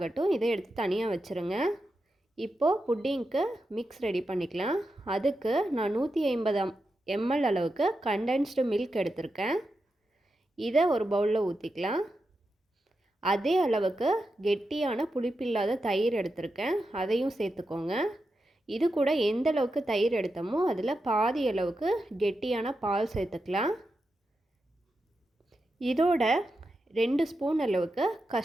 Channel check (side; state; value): both; normal; correlation 0.88